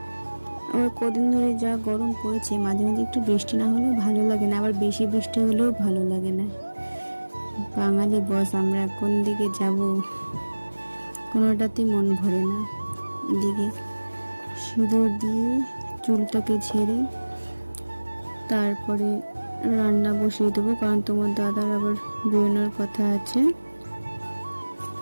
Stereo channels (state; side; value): inverted; both; correlation -1.00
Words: আবার কদিন ধরে যা গরম পড়েছে, মাঝে মাঝে একটু বৃষ্টি না হলেও ভালো লাগে না, আবার বেশি বৃষ্টি হলেও ভালো লাগে না। বাঙালি বস, আমরা কোন দিকে যাব কোনোটাতেই মন ভরে না। এদিকে সিঁদুর দিয়ে চুলটাকে ঝেড়ে তারপরে রান্না বসিয়ে দেবো, কারণ তোমার দাদার আবার বেরোনোর কথা আছে।